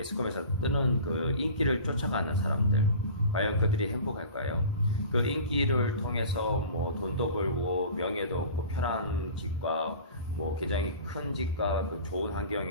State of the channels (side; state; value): both; inverted; correlation -0.39